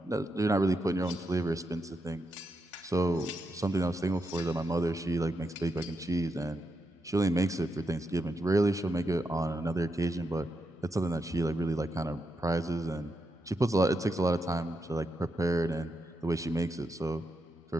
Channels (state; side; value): normal; both; correlation 0.84